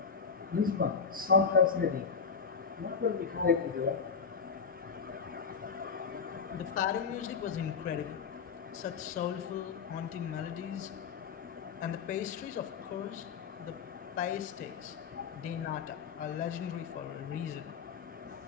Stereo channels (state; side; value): quieter; right; 5.8 dB